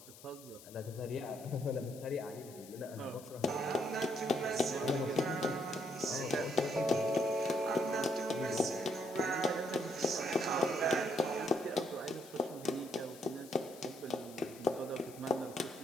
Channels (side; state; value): left; noise; hiss, 19 dB below the sound